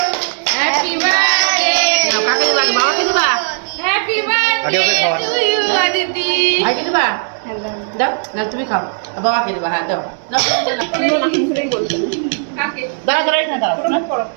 হ্যাপি বার্থডে কাকে দিবা বাবাকে দিবা হ্যাপি বার্থডে টু ইউ দিদি ভাইকে দিবা দাও না তুমি খাও বাবাকে দিবা হ্যাঁ দাও তুমি না মুখেই বলতে কাকে দাঁড়া দাঁড়াই না দাঁড়া করো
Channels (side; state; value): left; silent; digital silence